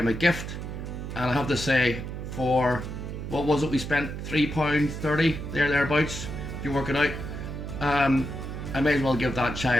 a gift. And I have to say, for what was it, we spent £3.30 thereabouts, if you work it out. I may as well give that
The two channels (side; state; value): right; noise; hum, 7 dB below the sound